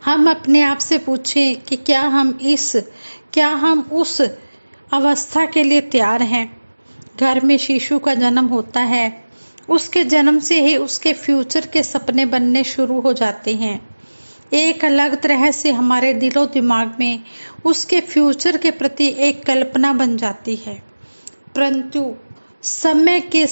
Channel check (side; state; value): both; inverted; correlation -1.00